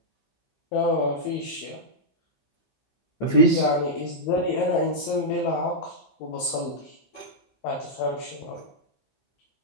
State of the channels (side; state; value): right; late; 15 ms